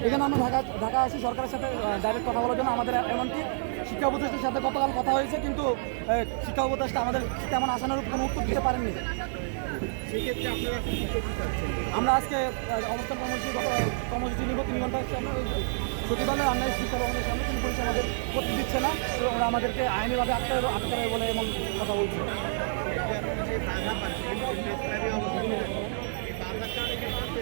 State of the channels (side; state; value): left; silent; digital silence